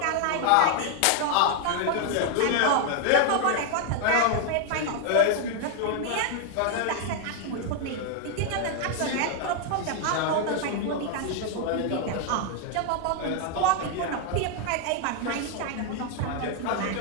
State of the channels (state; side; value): different; both; correlation 0.00